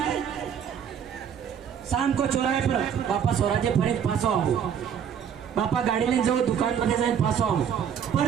शाम को चौराहे पर पापा स्वराज्य फरे पासो आओ, पापा गाड़ी लेने जाओ दुकान पर जाए पासो आओ,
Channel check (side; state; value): left; quieter; 8.2 dB